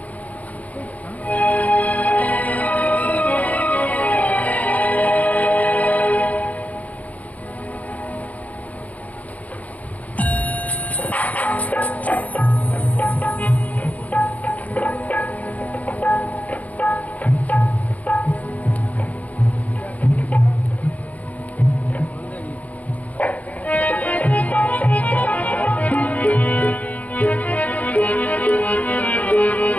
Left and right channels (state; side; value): late; right; 0.073 ms